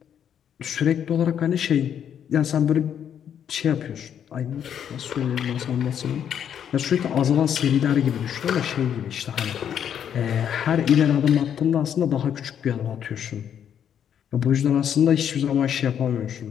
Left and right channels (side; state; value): right; quieter; 8.9 dB